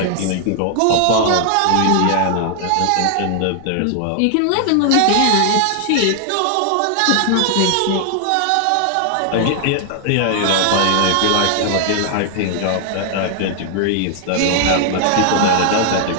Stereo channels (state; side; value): different; both; correlation 0.00